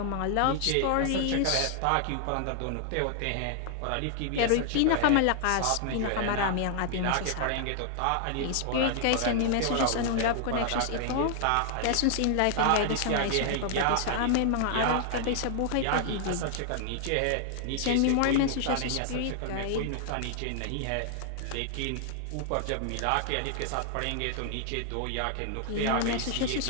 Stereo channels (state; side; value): different; both; correlation -0.01